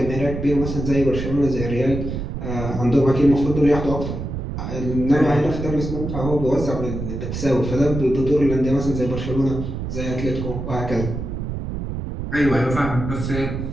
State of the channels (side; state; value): right; noise; rumble, 5 dB below the sound